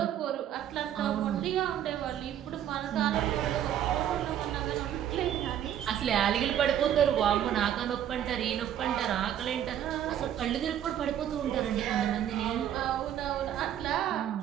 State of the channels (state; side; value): quieter; left; 10.5 dB